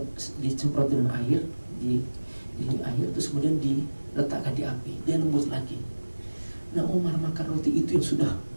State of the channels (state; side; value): inverted; both; correlation -1.00